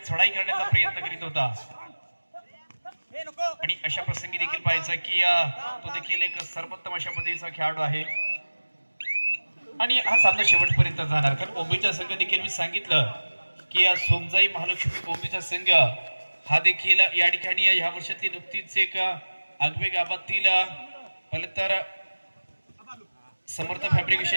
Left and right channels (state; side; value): inverted; both; correlation -1.00